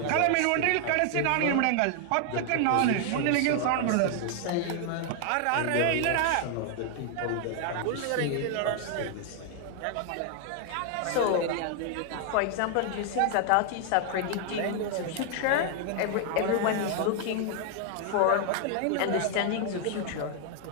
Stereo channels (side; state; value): both; different; correlation 0.00